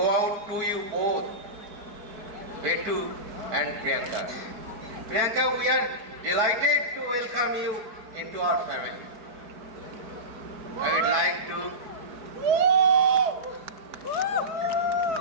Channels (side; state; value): left; late; 4.6 ms